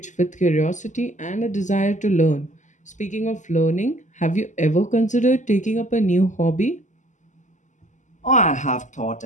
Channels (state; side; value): late; right; 0.36 ms